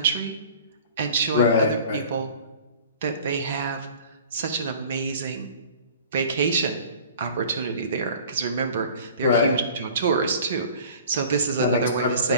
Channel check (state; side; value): inverted; both; correlation -0.44